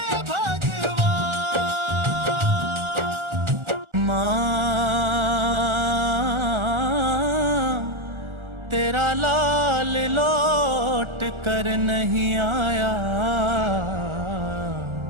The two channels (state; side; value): late; left; 1.4 ms